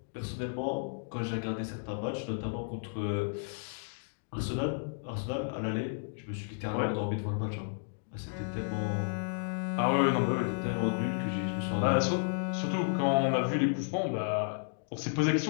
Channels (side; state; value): right; silent; digital silence